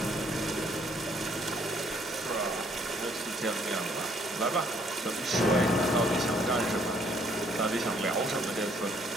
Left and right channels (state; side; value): normal; both; correlation 0.65